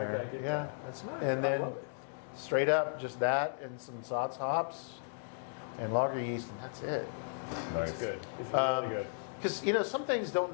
in I there. get Yeah. that. That's nice. And I then love it. straight up, just that and some Satz hops and lager yeast, and that's it. Nice. It's good. It's really good. Because, you know, some things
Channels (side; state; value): right; silent; digital silence